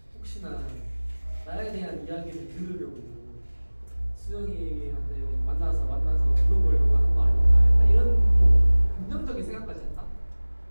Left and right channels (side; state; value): both; inverted; correlation -1.00